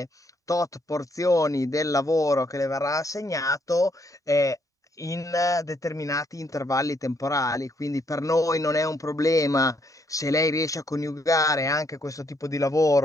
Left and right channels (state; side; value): normal; both; correlation 0.72